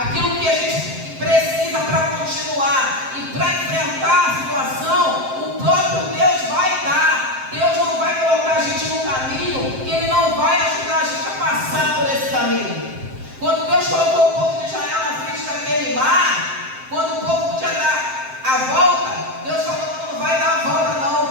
que a gente precisa para continuar e para enfrentar a situação, o próprio Deus vai dar. Deus não vai colocar a gente no caminho que Ele não vai ajudar a gente a passar por esse caminho. Quando Deus colocou o povo de Israel na frente daquele mar, quando o povo podia dar a volta, Deus falou: não vai dar a volta não,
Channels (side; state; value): left; late; 7.6 ms